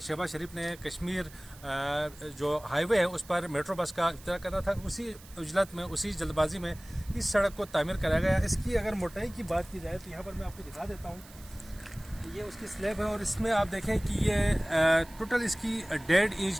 شہباز شریف نے کشمیر جو ہائی وے ہے اس پر میٹرو بس کا افتتاح کرنا تھا۔ اسی اجلت میں، اسی جلد بازی میں اس سڑک کو تعمیر کرایا گیا۔ اس کی اگر موٹائی کی بات کی جائے تو یہاں پر میں آپ کو دکھا دیتا ہوں، یہ اس کی سلیب ہے اور اس میں آپ دیکھیں کہ یہ ٹوٹل اس کی 1.5 انچ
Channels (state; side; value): noise; right; hiss, 21 dB below the sound